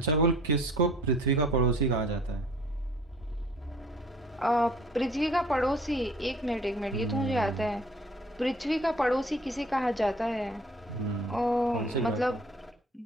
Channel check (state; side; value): normal; both; correlation 0.52